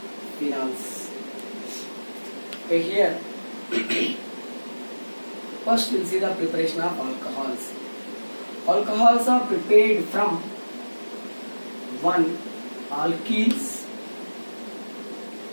phenols. Okay, here first we'll see the preparation of alcohols. Alcohols are prepared from 1. Alkenes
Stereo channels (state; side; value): inverted; both; correlation -1.00